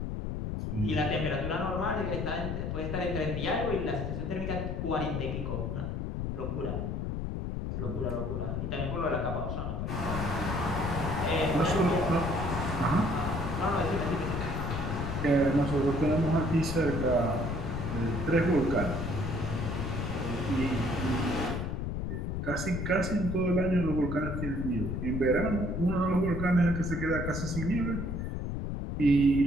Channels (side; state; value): left; noise; rumble, 3 dB below the sound